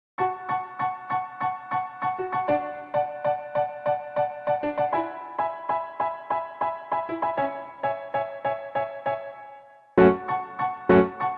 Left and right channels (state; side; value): identical; both; correlation 1.00